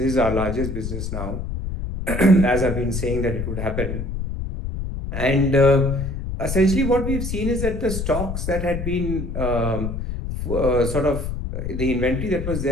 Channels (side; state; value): left; noise; rumble, 4 dB below the sound